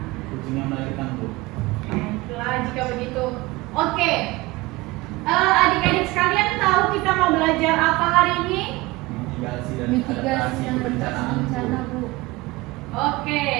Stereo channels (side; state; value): left; quieter; 21.2 dB